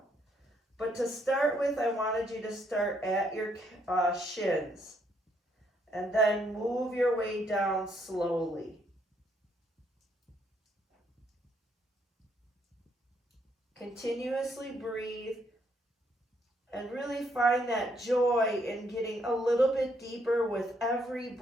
But to start with, I wanted you to start at your shins and then move your way down slowly. Continuously breathe and really find that joy in getting a little bit deeper with every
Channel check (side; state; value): both; normal; correlation 0.72